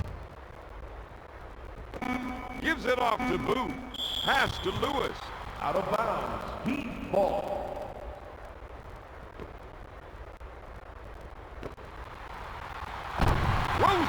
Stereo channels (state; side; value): identical; both; correlation 1.00